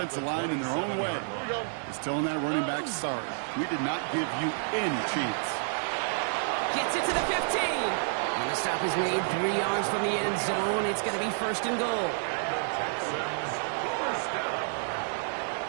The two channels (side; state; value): left; silent; digital silence